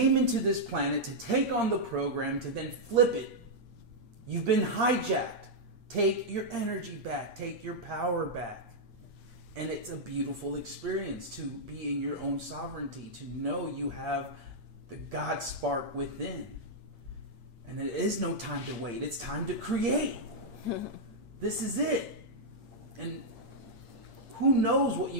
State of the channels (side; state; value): left; late; 8.7 ms